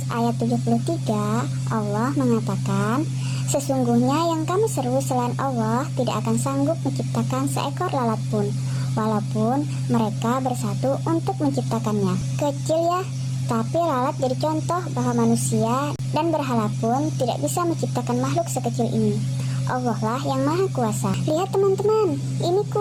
ayat 73, Allah mengatakan, sesungguhnya yang kamu seru selain Allah tidak akan sanggup menciptakan seekor lalat pun, walaupun mereka bersatu untuk menciptakannya. Kecil ya, tapi lalat jadi contoh bahwa manusia dan berhala pun tidak bisa menciptakan makhluk sekecil ini. Allah lah yang maha kuasa. Lihat teman-teman, ini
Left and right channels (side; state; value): both; identical; correlation 1.00